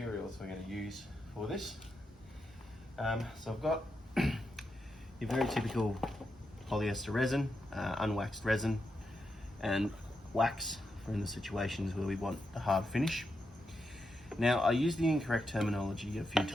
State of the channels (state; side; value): normal; both; correlation 0.85